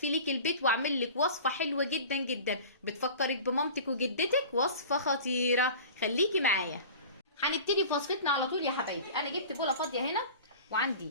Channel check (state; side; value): inverted; both; correlation -0.38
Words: لك البيت واعمل لك وصفه حلوه جدا جدا بتفكرك بمامتك وجدتك. وصفه خطيره، خليكي معايا. هنبتدي في وصفتنا على طول يا حبايبي. انا جبت بوله فاضيه هنا، وعندي